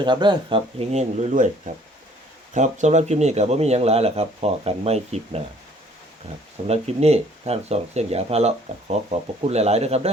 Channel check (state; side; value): normal; both; correlation 0.57